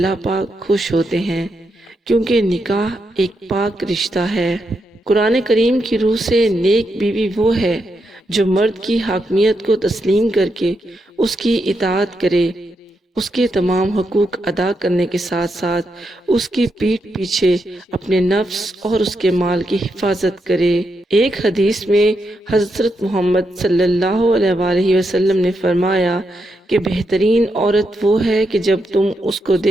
پاک خوش ہوتے ہیں، کیونکہ نکاح ایک پاک رشتہ ہے۔ قرآن کریم کی روح سے نیک بیوی وہ ہے جو مرد کی حاکمیت کو تسلیم کر کے اس کی اطاعت کرے، اس کے تمام حقوق ادا کرنے کے ساتھ ساتھ اس کی پیٹھ پیچھے اپنے نفس اور اس کے مال کی حفاظت کرے۔ ایک حدیث میں حضرت محمد صلی اللہ علیہ وآلہ وسلم نے فرمایا کہ بہترین عورت وہ ہے کہ جب تم اس کو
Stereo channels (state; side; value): normal; both; correlation 0.83